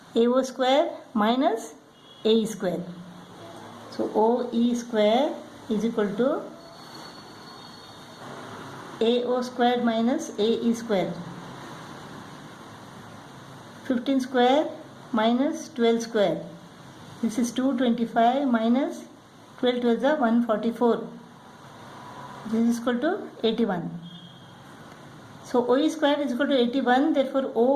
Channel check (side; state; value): both; identical; correlation 1.00